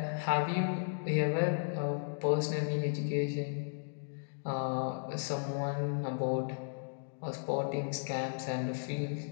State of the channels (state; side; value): silent; right; digital silence